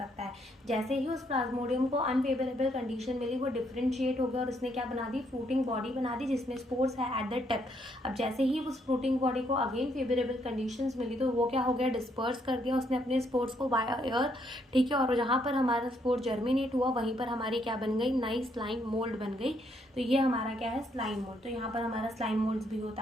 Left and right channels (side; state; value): both; normal; correlation 0.72